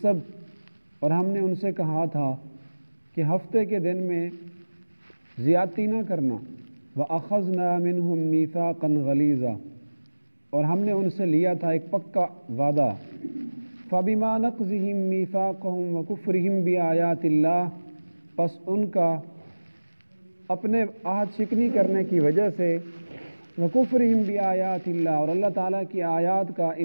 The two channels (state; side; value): inverted; both; correlation -1.00